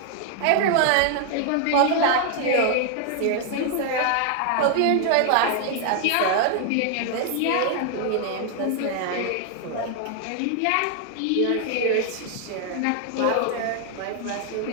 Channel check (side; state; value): both; different; correlation 0.00